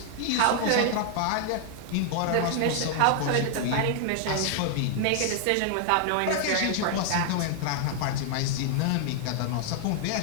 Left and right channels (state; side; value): different; both; correlation 0.00